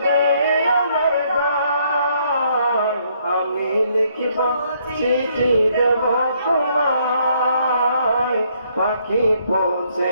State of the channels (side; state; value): both; inverted; correlation -0.69